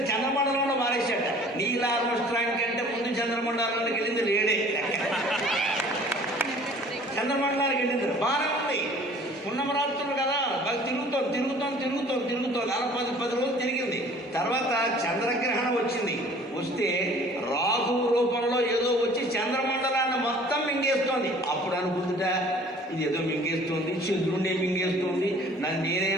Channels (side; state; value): both; normal; correlation 0.50